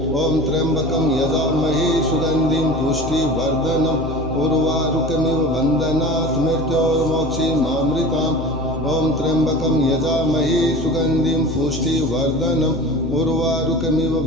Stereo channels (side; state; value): left; noise; hum, 9 dB below the sound